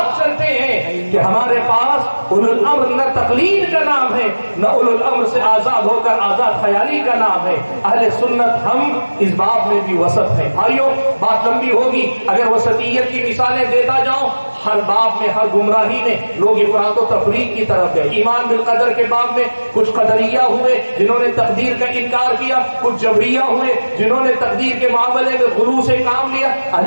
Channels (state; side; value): inverted; both; correlation -1.00